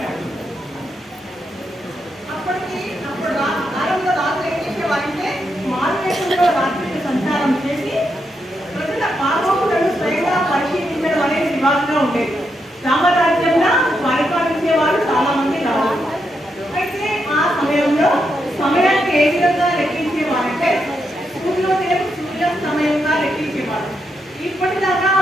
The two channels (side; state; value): both; normal; correlation 0.82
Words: అప్పుడు కాలంలో రాజులు ఏం చేసేవారంటే మారువేషంలో రాత్రికి సంచారం చేసి ప్రజల పాపములను స్వయంగా పరిశీలించడం అనేది వివాదంగా ఉండేది. రామరాజ్యంలో పరిపాలించే వారు చాలా మంది రావాలి. అయితే ఆ సమయంలో సమయాన్ని ఏ విధంగా లెక్కించేవారంటే సూర్యాస్తమయంగా లెక్కించేవారు. ఇప్పటిదాకా